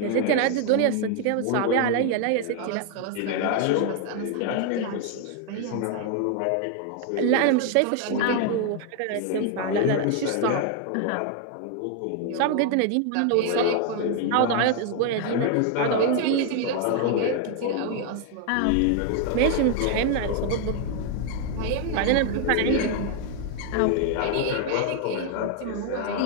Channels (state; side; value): different; both; correlation 0.00